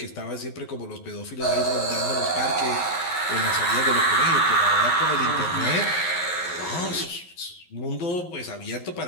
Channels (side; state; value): right; late; 11 ms